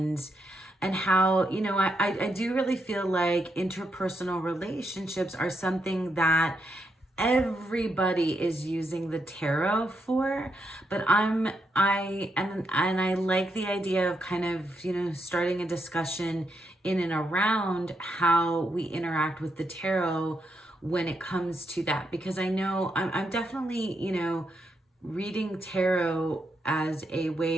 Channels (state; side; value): normal; both; correlation 0.81